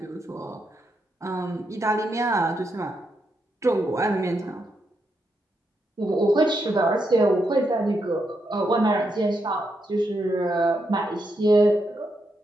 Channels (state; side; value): normal; both; correlation 0.82